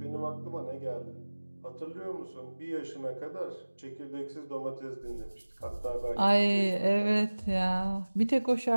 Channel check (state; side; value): inverted; both; correlation -1.00